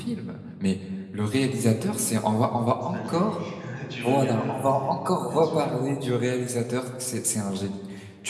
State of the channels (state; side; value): identical; both; correlation 1.00